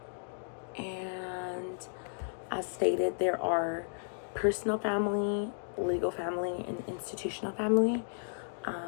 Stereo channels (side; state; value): right; silent; digital silence